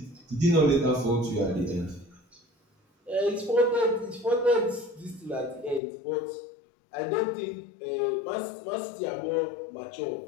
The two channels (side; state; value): right; drops out; at 5.8 s